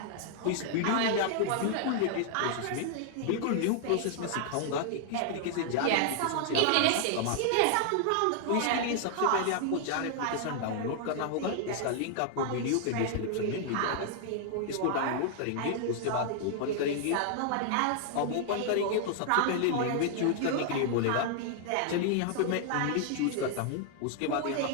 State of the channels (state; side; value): different; both; correlation 0.00